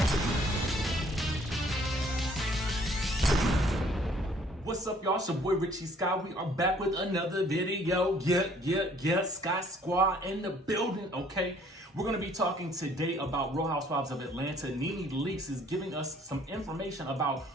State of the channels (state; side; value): normal; both; correlation 0.60